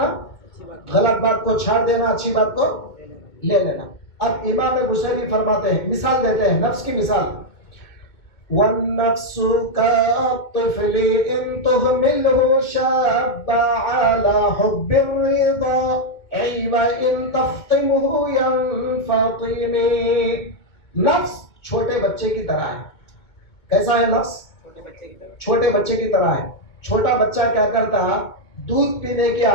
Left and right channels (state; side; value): late; right; 2.2 ms